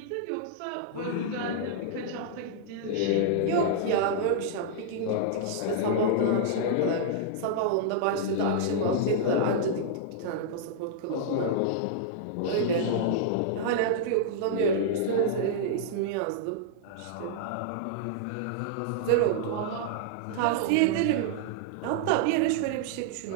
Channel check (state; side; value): different; both; correlation -0.01